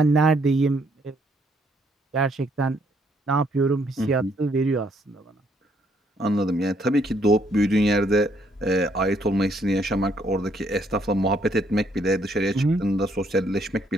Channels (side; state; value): both; normal; correlation 0.69